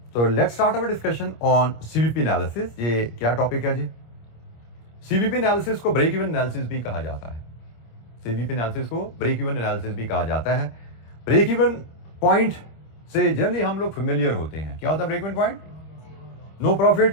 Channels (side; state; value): right; late; 26 ms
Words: तो let's start our discussion on CVP analysis. ये क्या टॉपिक है जी? CVP एनालिसिस को ब्रेक इवन एनालिसिस भी कहा जाता है। सीवीपी एनालिसिस को ब्रेक इवन एनालिसिस भी कहा जाता है। ब्रेक इवन पॉइंट से जनरली हम लोग फेमिलियर होते हैं। क्या होता है break even point? No